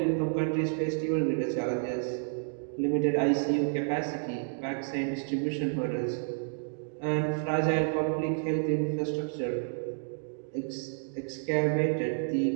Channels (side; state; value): left; silent; digital silence